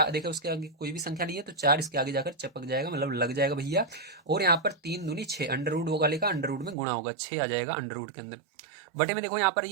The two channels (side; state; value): left; drops out; at 6.8 s